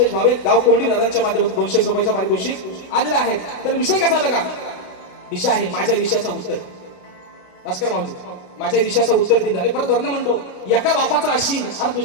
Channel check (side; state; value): right; late; 32 ms